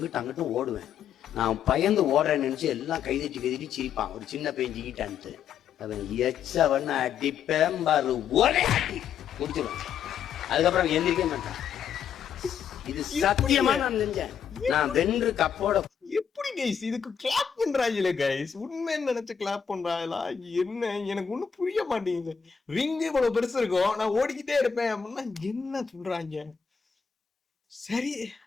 ஓடுவேன். நான் பயந்து ஓடுறேன்னு நினைச்சு எல்லாம் கைதட்டி சிரிப்பான். ஒரு சின்ன பையன் ஜிக்கிட்டான்ட்டு அவன் எச்சவன் அடிப்பேன் பாரு, ஒரே அடி முடிச்சிருவான். அதுக்கப்புறம் எந்திரிக்க மாட்டான். இது சத்தியமா நான் செஞ்சேன். நான் வென்று கப்போட. எப்படி கைஸ் இதுக்கு கிளாப் பண்றாங்களே கைஸ்? உண்மைன்னு நினைச்சு கிளாப் பண்றாங்களா என்ன? எனக்கு ஒண்ணும் புரிய மாட்டேங்குது. ரிங் இவ்வளவு பெருசு இருக்கும், நான் ஓடிக்கிட்டே இருப்பேன் அப்படின்னா என்ன சொல்றாங்க? சரி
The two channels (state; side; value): quieter; right; 7.6 dB